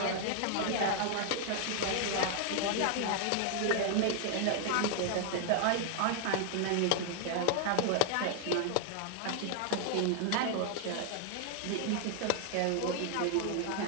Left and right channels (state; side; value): different; both; correlation 0.00